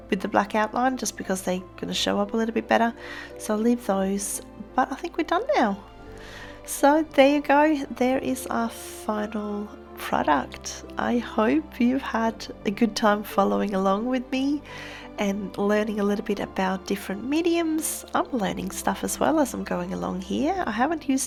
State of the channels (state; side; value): identical; both; correlation 1.00